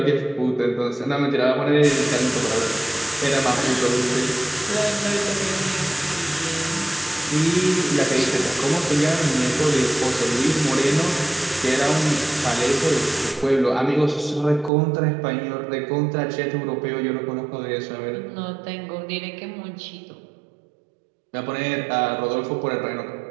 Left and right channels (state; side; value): drops out; left; at 14.7 s